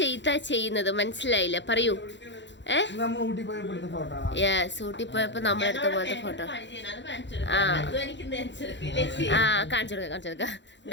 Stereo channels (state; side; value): late; right; 0.52 ms